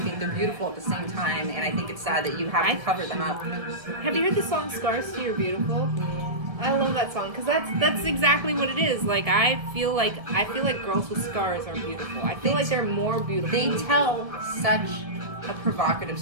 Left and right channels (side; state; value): left; late; 1.8 ms